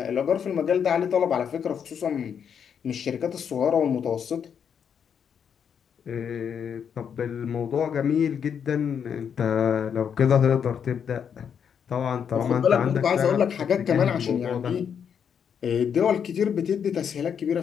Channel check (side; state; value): right; quieter; 7.6 dB